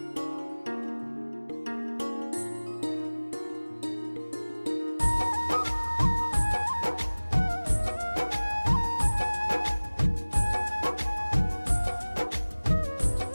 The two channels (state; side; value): inverted; both; correlation -1.00